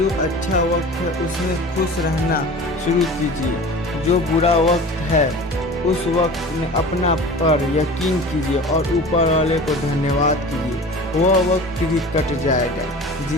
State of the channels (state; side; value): normal; both; correlation 0.38